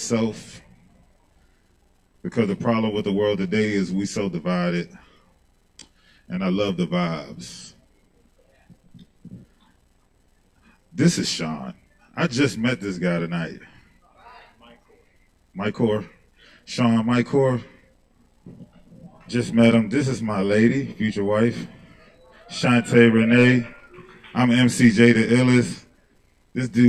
because the problem with the world today is we so divided, and I love the vibes. This is Sean. I just met this guy tonight. Mycor. Sean Mycor. Just met him. This is my lady, future wife, Shante Renee. I'm MCJ the illest. This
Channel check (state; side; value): identical; both; correlation 1.00